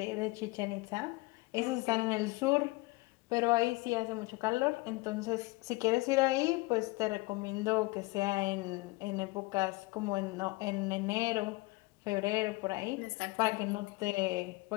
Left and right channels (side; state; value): right; quieter; 23.4 dB